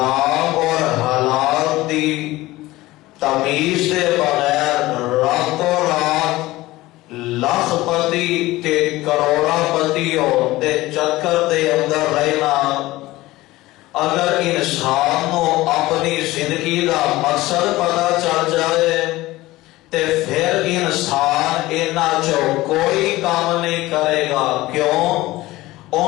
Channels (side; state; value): right; quieter; 18.4 dB